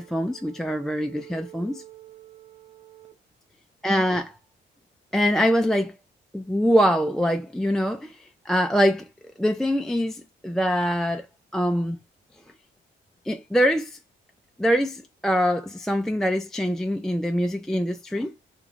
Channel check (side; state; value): both; normal; correlation 0.89